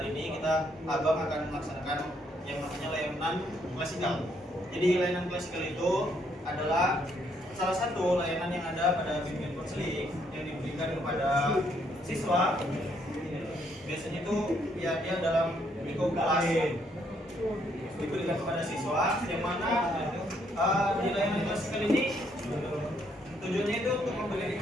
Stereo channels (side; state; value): both; normal; correlation 0.71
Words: ini Abang akan melaksanakan yang namanya layanan klasikal. Jadi layanan klasikal itu adalah salah satu layanan yang ada pada bimbingan konseling yang diberikan kepada siswa. Biasanya itu ya dia dalam lingkup kelas diberikan kepada siswa, yang mana di layanan klasikal ini tujuannya itu untuk memberikan